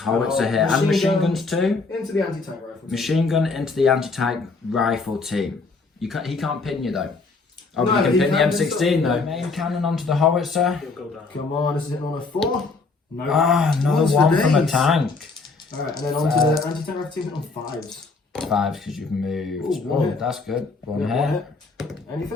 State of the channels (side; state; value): right; quieter; 4.0 dB